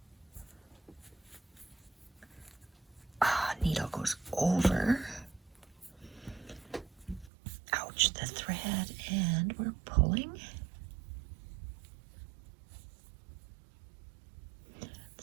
Needle goes over. Ouch, the thread, and we're pulling.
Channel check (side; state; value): left; drops out; at 7.3 s